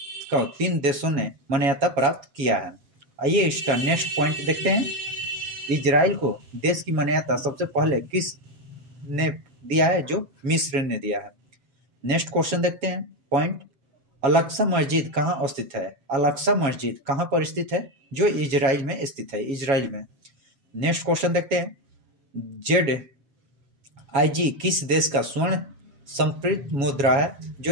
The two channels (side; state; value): left; late; 7.3 ms